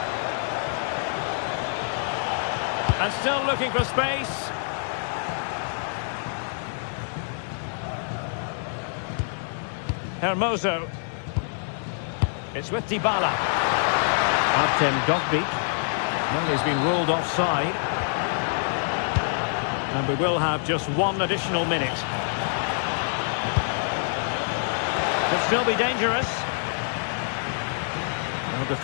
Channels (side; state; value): right; silent; digital silence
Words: And still looking for space. Hermoso. It's with Dybala. Artem Dovbyk. Well, he's been ruled offside. And we will have just 1 additional minute. Could still be dangerous. No